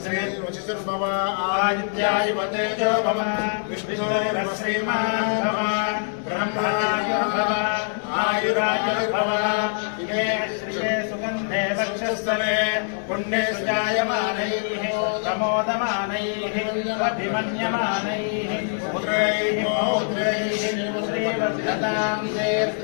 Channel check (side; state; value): right; silent; 62 dB below the other